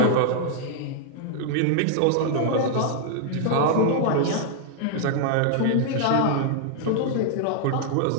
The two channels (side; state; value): both; different; correlation 0.00